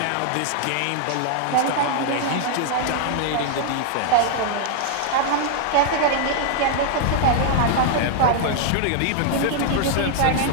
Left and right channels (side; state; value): both; different; correlation 0.00